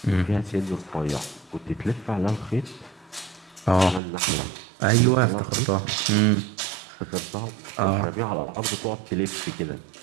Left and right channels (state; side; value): drops out; left; at 4.0 s